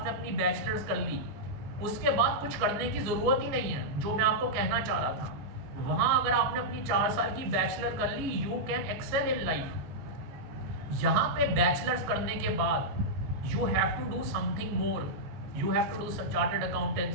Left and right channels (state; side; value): late; left; 15 ms